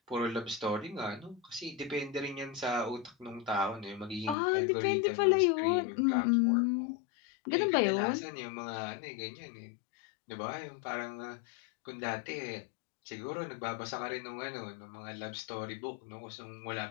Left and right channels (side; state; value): right; drops out; at 4.4 s